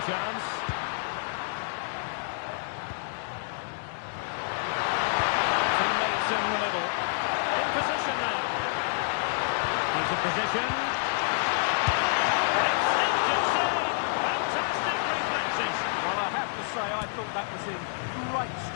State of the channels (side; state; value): right; silent; 59 dB below the other